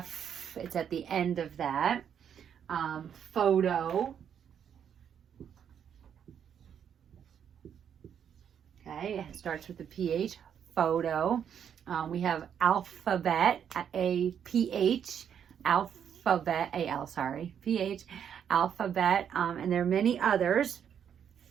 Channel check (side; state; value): left; quieter; 8.5 dB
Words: it's at the end of that. Photo, okay, it starts with the PH, photo. We have alphabet, A-P-H, alphabet, A-L, sorry, P-H, alphabet, and there are many others.